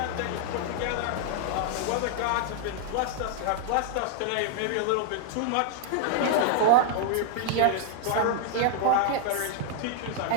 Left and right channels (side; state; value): both; different; correlation -0.01